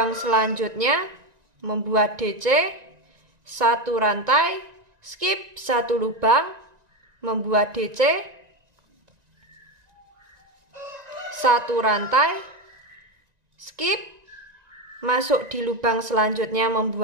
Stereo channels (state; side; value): late; left; 1.9 ms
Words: selanjutnya, membuat DC, satu rantai, skip satu lubang, membuat DC, satu rantai, skip, masuk di lubang selanjutnya